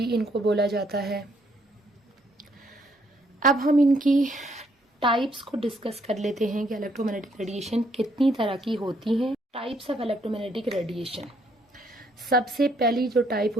इनको बोला जाता है। अब हम इनकी टाइप्स को डिस्कस कर लेते हैं कि इलेक्ट्रोमैग्नेटिक रेडिएशन कितनी तरह की होती हैं। टाइप्स ऑफ इलेक्ट्रोमैग्नेटिक रेडिएशन, सबसे पहली जो टाइप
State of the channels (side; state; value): both; normal; correlation 0.69